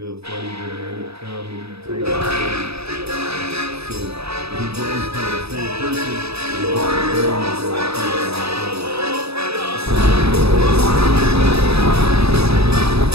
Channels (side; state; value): left; late; 0.78 ms